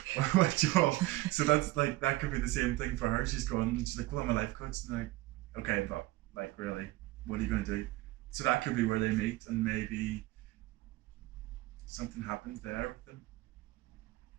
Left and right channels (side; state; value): left; quieter; 18.6 dB